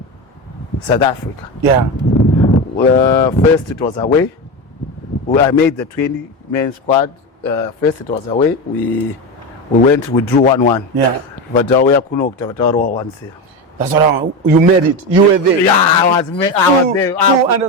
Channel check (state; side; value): normal; both; correlation 0.18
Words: South Africa. Yeah. First it was away. I made the 20-man squad. First it was away. We drew 1-1. Yeah. But we are once. That's what you made it. You were there. Yeah, I was there. Full